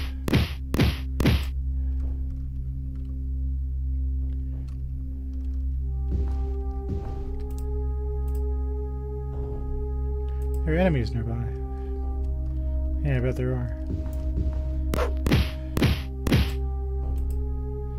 There are enemies nearby. Yeah, I bet there are.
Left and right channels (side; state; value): both; identical; correlation 1.00